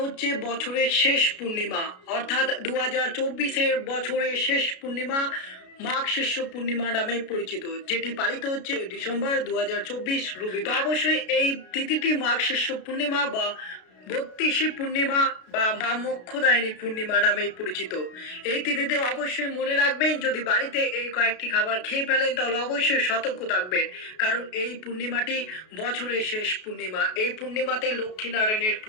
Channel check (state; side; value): late; right; 33 ms